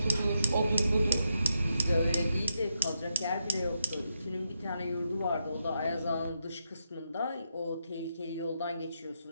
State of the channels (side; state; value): both; inverted; correlation -0.83